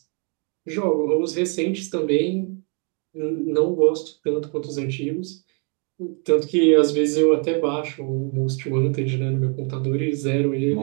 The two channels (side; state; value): left; quieter; 37.9 dB